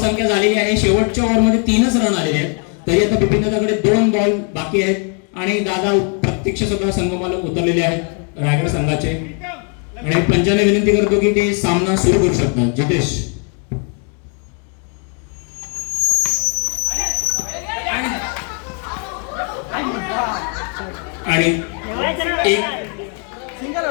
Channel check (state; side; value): quieter; right; 39.9 dB